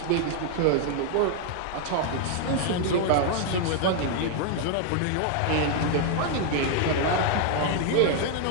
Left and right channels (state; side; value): different; both; correlation 0.00